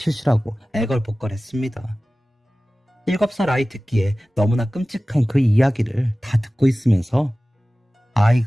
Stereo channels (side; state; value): both; normal; correlation 0.97